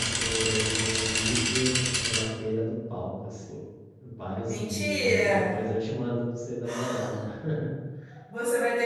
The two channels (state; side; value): identical; both; correlation 1.00